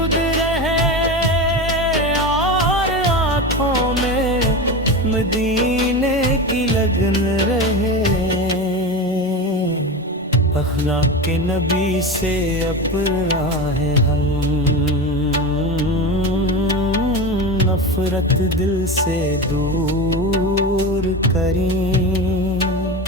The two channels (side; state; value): both; normal; correlation 0.23